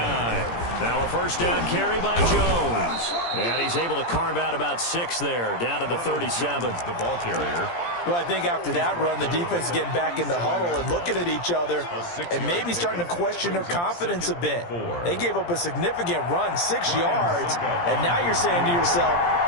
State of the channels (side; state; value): right; late; 17 ms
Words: Now a 1st down carry by Jones. And he's able to carve out about 6 there, down to the 37. The ball carrier. Well, I think after that run, the defense is getting back in the huddle and looking at each other and maybe starting to question their confidence a bit. They gave up a significant run, 6 yards, and now you're saying to yourself,